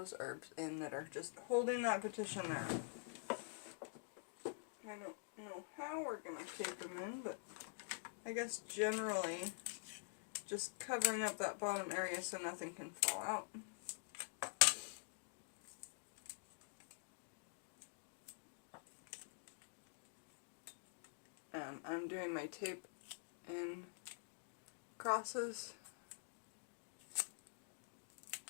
herbs in that are just holding that petition there. I don't know how we're going to tape them in, but I guess generally just covering up that bottom area so nothing can fall out. I'm doing my tape in crosses.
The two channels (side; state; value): right; silent; digital silence